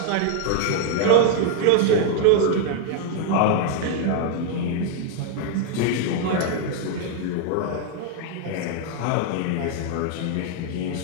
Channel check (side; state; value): both; different; correlation 0.00